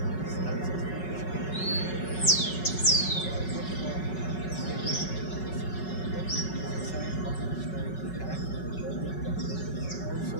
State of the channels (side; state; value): right; late; 5.3 ms